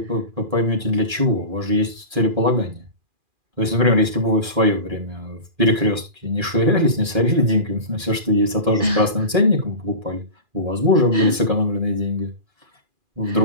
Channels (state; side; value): late; left; 2.4 ms